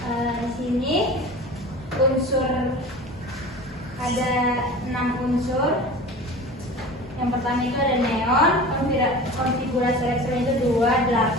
Di sini unsur ada 6 unsur. Yang pertama itu ada neon, konfigurasi elektron itu 2,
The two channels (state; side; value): normal; both; correlation 0.36